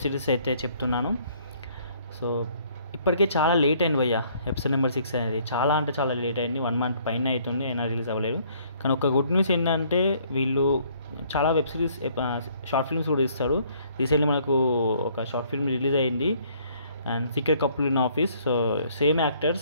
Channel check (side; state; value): both; inverted; correlation -0.62